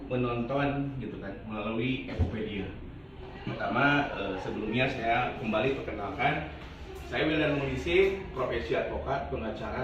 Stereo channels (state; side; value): identical; both; correlation 1.00